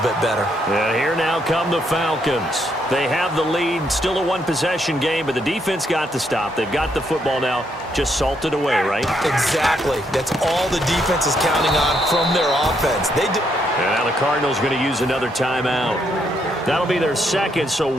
bit better. And here now come the Falcons. They have the lead, still a 1-possession game, but the defense got the stop. They've got the football now, just salted away, right? Exactly. That's all the defense is counting on from their offense. And now the Cardinals going to use another timeout. That'll be their 2nd, so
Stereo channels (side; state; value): both; normal; correlation 0.75